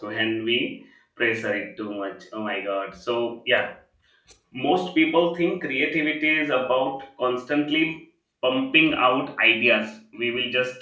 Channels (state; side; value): identical; both; correlation 1.00